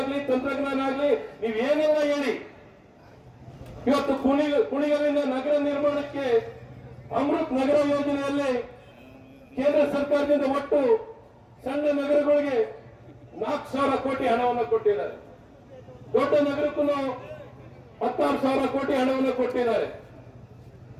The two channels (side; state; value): both; identical; correlation 1.00